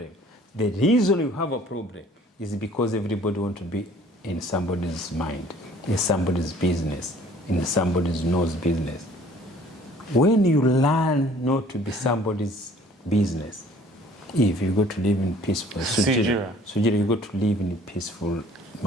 The reason you have a problem is because everybody wants to be in somebody's mind, in somebody's business, in somebody's nose business. When you learn not to be somebody's business, if you go to live in peaceful, Sugira, you go to live in a peaceful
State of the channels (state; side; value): normal; both; correlation 0.54